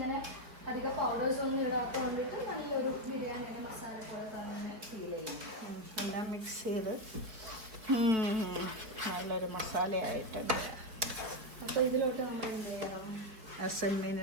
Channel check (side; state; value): left; late; 4.9 ms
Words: അധികം പൗഡേഴ്സ് ഒന്നും ഇടാത്ത കൊണ്ടിട്ട് നല്ലൊരു ബിരിയാണിയുടെ മസാല പോലെ തന്നെ ഫീൽ ചെയ്യും. എല്ലാം മിക്സ് ചെയ്ത് നല്ലൊരു മസാലയായിട്ടുണ്ട്. അപ്പോൾ ഇതിലോട്ട് നമ്മൾ എന്ത് ചെയ്യണം? ചെമ്മീൻ